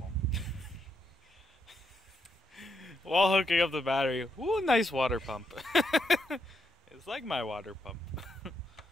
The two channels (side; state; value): both; normal; correlation 0.79